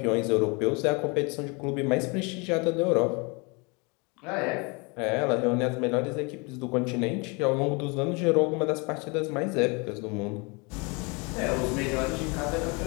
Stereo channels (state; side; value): quieter; right; 30.1 dB